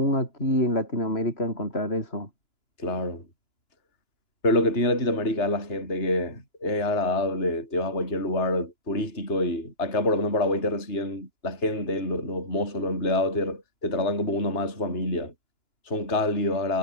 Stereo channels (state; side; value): late; right; 2.9 ms